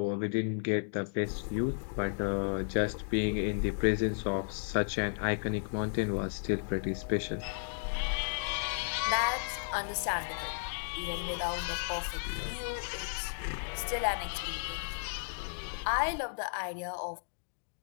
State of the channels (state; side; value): silent; right; digital silence